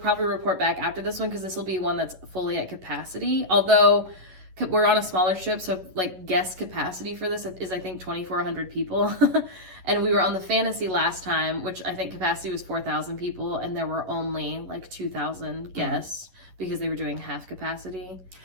report back after this one because this will be one that's fully at capacity. Although we're on a smaller ship, so like guest capacity for this is I think 2,400 people, and we were on the Fantasy last time, which I think capacity was 4,000 people, and there were only like 2,000 guests because they were doing half capacity.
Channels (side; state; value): left; late; 11 ms